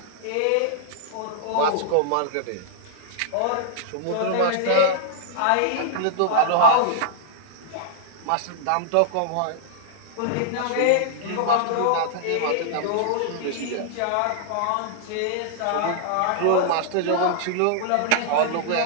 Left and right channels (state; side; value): different; both; correlation -0.01